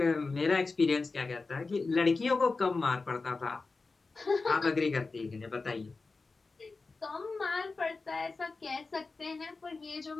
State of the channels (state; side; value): quieter; right; 3.9 dB